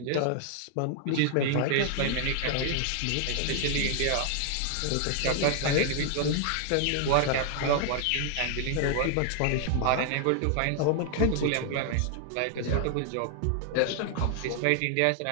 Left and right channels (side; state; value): both; different; correlation 0.00